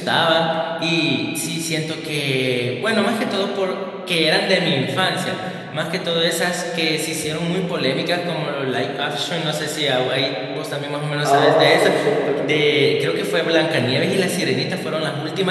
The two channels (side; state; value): both; identical; correlation 1.00